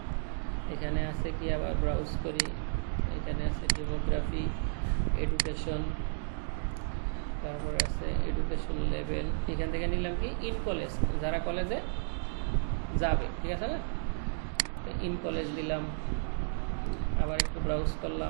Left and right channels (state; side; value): silent; left; digital silence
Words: এখানে আছে কি, আবার ব্রাউজ করি, এখানে আছে ডেমোগ্রাফি, এডুকেশন, তারপরে আছে এডুকেশন লেভেল। এখান থেকে নিলাম কি ইন কলেজ, যারা কলেজে যাবে, ঠিক আছে না, ইন কলেজ দিলাম। আবার একটু ব্রাউজ